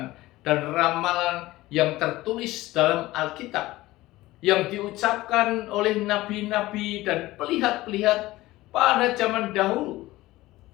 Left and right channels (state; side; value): quieter; right; 17.9 dB